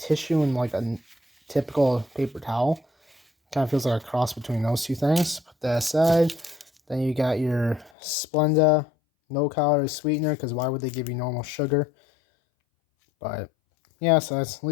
and like a typical paper towel. Kind of feels like a cross between those two things. Put that aside. Then you got your Splenda no-calorie sweetener, because why would they give you normal sugar? But yeah, so that's, at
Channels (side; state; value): right; drops out; at 7.9 s